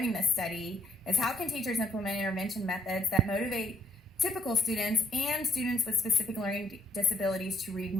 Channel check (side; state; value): both; normal; correlation 0.70